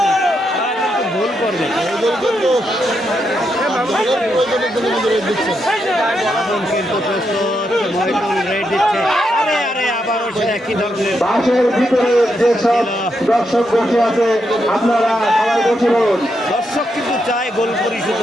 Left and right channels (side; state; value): both; normal; correlation 0.82